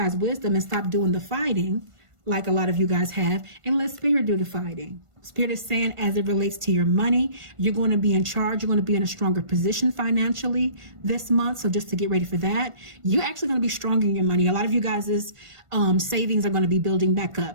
wisdom and stop doing the fighting like a lot of you guys have, and let Spirit do the fighting. Spirit is saying, as it relates to your money, you're going to be in charge. You're going to be in a stronger position financially this month. So just to get ready for that, you're actually going to be stronger in your money. A lot of you guys' savings are going to be building back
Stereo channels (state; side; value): late; left; 1.5 ms